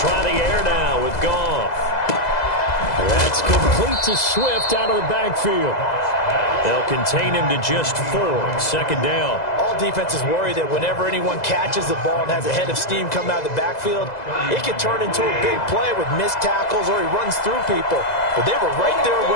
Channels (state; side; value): late; right; 2.0 ms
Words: the air now with Goff. That's complete to Swift out of the backfield. They'll contain him to just 4. 2nd down. All defenses worry that whenever anyone catches the ball and has a head of steam come out of the backfield, it could turn into a big play with missed tackles or he runs through people. But they were right there